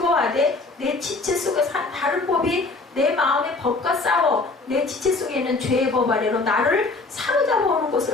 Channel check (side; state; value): right; quieter; 3.5 dB